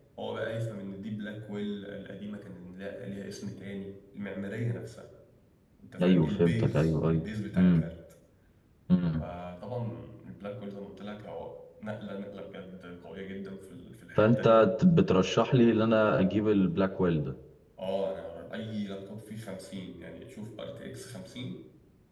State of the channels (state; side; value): identical; both; correlation 1.00